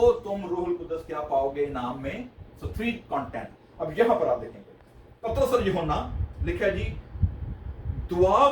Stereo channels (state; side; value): identical; both; correlation 1.00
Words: तुम रूहुल कुदस क्या पाओगे नाम में। सो 3 कंटेंट। अब यहां पर आप देखेंगे पतरस और यूहन्ना लिखा है जी, दुआ